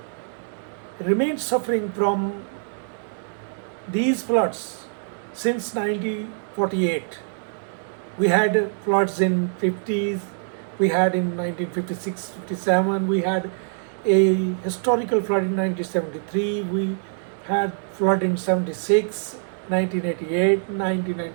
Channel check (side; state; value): left; silent; digital silence